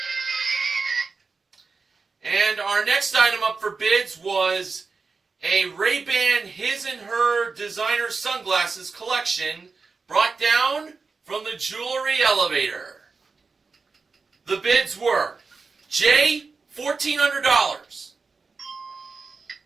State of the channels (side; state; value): left; quieter; 4.5 dB